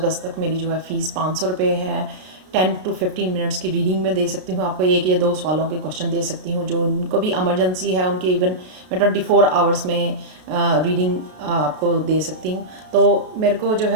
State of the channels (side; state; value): left; late; 33 ms